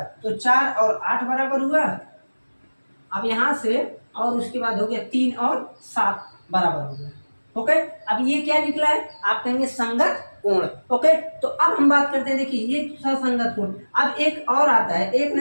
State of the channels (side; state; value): both; inverted; correlation -1.00